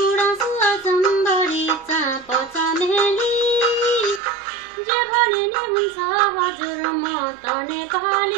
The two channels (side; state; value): left; drops out; at 4.2 s